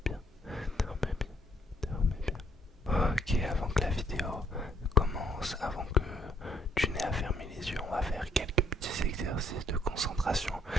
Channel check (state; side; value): normal; both; correlation 0.66